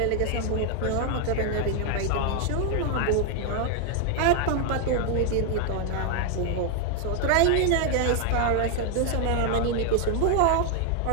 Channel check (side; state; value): both; different; correlation 0.00